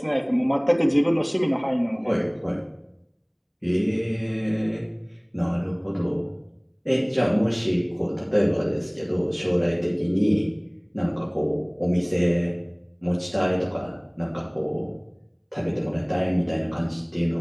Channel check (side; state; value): both; identical; correlation 1.00